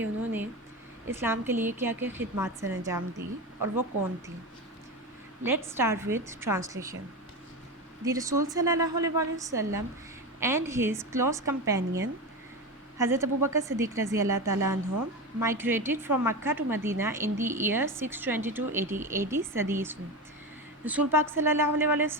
انہوں نے اسلام کے لیے کیا کیا خدمات سر انجام دی اور وہ کون تھی۔ Let's start with translation. The رسول صلی اللہ علیہ وسلم اینڈ ہز کلوز کمپینین حضرت ابو بکر صدیق رضی اللہ تعالیٰ عنہ migrated from Makkah to Medina in the year 622 AD صدی عیسوی۔ رسول پاک صلی اللہ علیہ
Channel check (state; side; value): normal; both; correlation 0.20